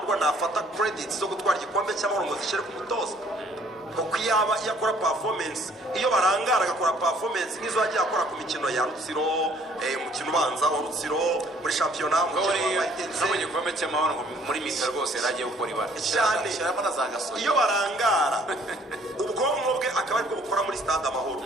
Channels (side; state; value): both; normal; correlation 0.59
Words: nafata credits zo gutwara igikombe cy'amahoro ngo zishyire ku mutoza kuko yaba yakora performance iyo barangara agakora performance nk'izo yagiye akora ku mikino ya Rutsiro umukino ubanza wa Rutsiro muri shampiyona umukino wa Itense mu gikombe cy'amahoro muri mita rwose yaragiye gukora ibara cyane iyo barangara ubwonko bwe akaba ariko bukora muri stade Amahoro